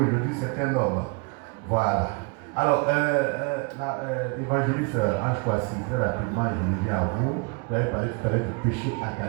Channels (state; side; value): quieter; left; 30.9 dB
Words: c'est un homme. Voilà. Alors, évangéliste Ange Kwasi, très rapidement, je reviens à vous. Vous avez parlé tout à l'heure du péché